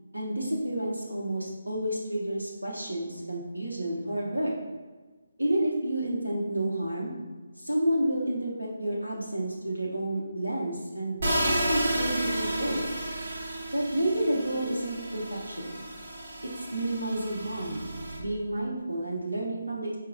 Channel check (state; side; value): inverted; both; correlation -0.87